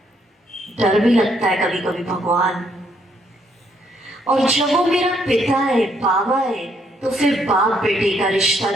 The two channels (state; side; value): normal; both; correlation 0.71